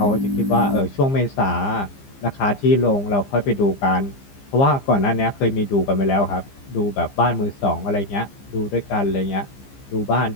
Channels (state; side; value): late; right; 15 ms